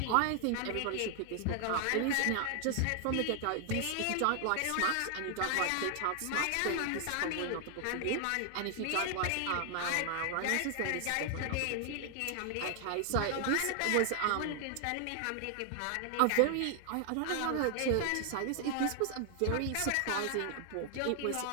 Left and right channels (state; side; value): different; both; correlation 0.00